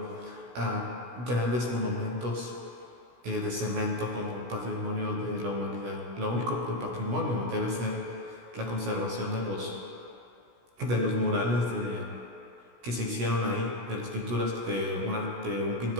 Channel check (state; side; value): late; left; 16 ms